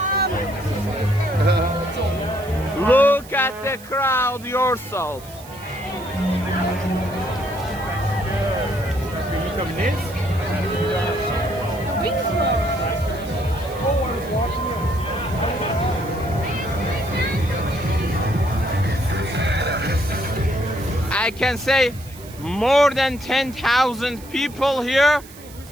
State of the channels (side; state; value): right; noise; hiss, 20 dB below the sound